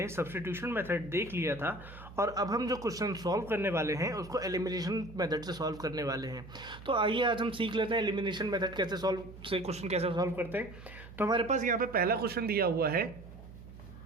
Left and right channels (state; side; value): noise; right; hum, 16 dB below the sound